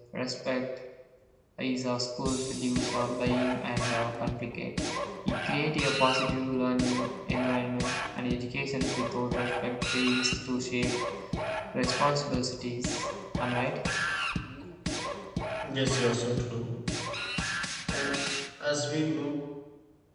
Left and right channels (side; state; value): both; identical; correlation 1.00